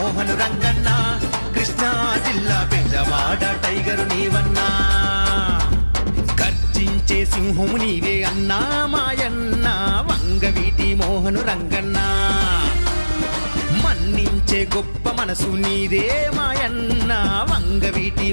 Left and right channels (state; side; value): inverted; both; correlation -1.00